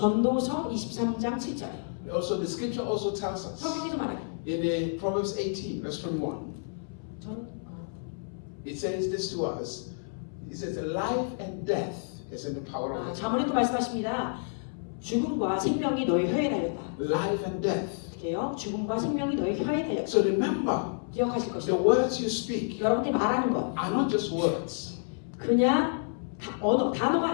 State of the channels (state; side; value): silent; right; 58 dB below the other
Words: 23장 7절. Also the scripture also tells us 성경에서 말하길 in Proverbs 18 verse 21. It says this to us. It says life and death is in the power of the tongue. 자문에도 말씀하십니다. 죽음과 생명이 너의 혀에 달렸다. Life and death. 그게요. 죽음과 생명이 너의 혀에 달렸다. So remember, 기억하실 the 것이다. words you speak 여러분들이 말하는 것 are not just words. 그냥